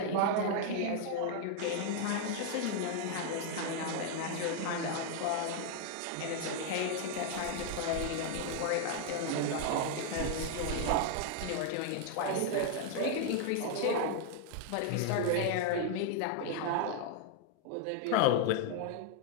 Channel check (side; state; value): both; different; correlation 0.00